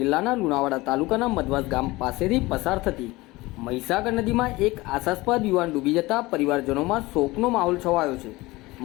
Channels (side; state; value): right; quieter; 20.7 dB